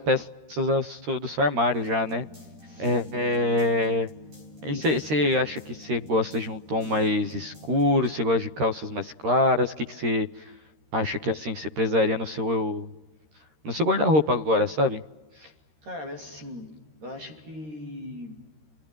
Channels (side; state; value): left; late; 13 ms